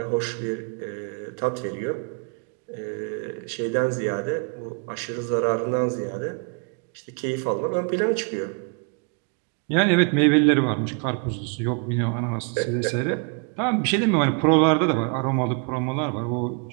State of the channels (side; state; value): left; quieter; 37.5 dB